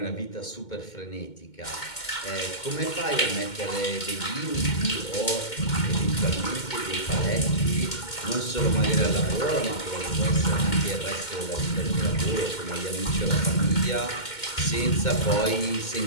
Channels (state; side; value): late; right; 2.1 ms